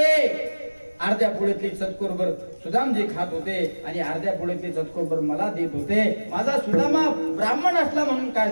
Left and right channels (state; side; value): inverted; both; correlation -1.00